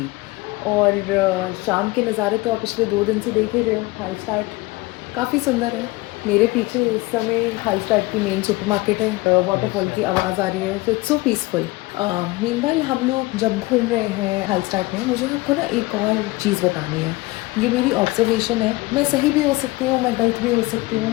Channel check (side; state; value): right; quieter; 21.5 dB